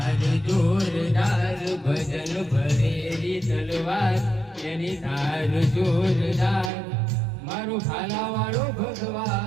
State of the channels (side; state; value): left; drops out; at 6.7 s